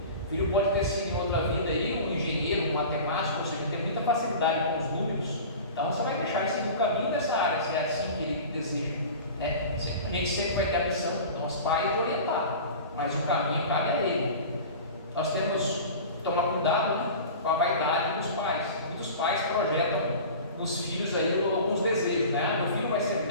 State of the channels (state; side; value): inverted; both; correlation -0.36